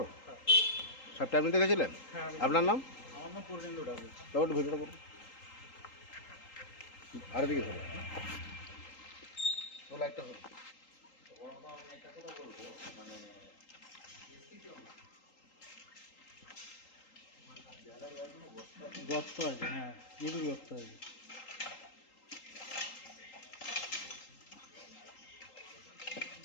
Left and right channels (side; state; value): right; late; 3.8 ms